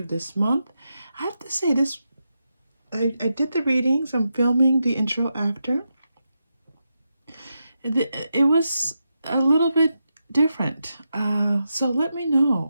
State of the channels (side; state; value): both; inverted; correlation -0.87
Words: this month. I have to say this, I did the readings, I'm filming the intro after. It was a little bit different. So let me